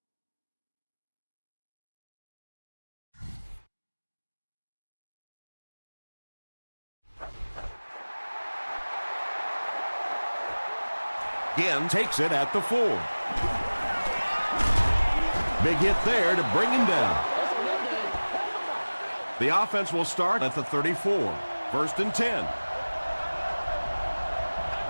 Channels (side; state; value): both; inverted; correlation -1.00